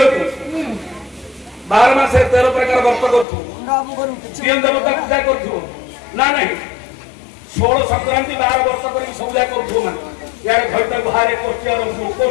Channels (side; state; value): right; drops out; at 3.2 s